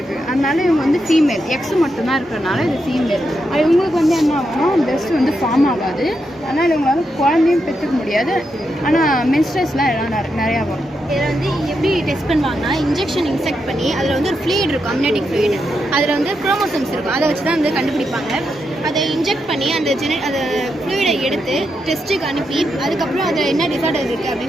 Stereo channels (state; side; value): normal; both; correlation 0.84